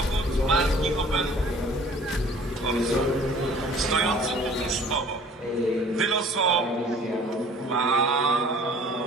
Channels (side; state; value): both; normal; correlation 0.51